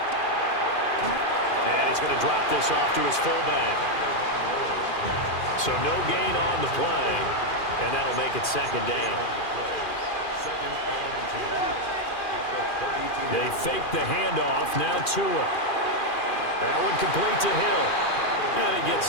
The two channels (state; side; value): late; right; 2.4 ms